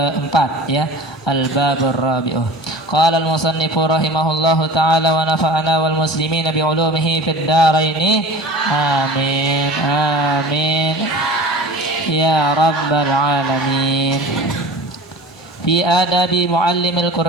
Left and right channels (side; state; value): both; normal; correlation 0.39